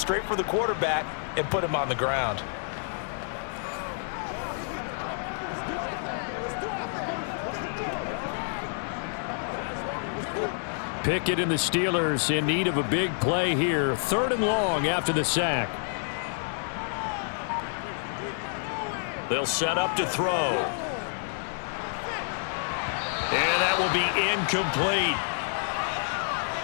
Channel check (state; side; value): silent; right; 56 dB below the other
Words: for the quarterback and put him on the ground. Pickett and the Steelers in need of a big play here. 3rd and long after the sack. They'll set up to throw. And that will be incomplete.